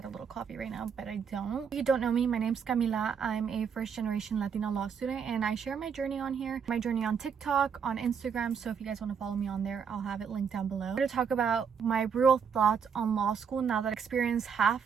a little coffee right now, but I don't. If you don't know me, my name's Camila. I'm a first generation Latina law student, and I share my journey on here, my journey on TikTok, on Instagram. So if you guys want to follow me on there, I'll have it linked down below. I'm going to talk about my real thoughts on law school now that I experienced half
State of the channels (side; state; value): left; quieter; 6.8 dB